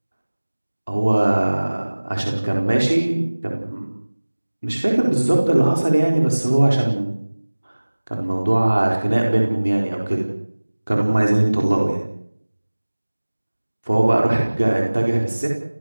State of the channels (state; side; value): inverted; both; correlation -1.00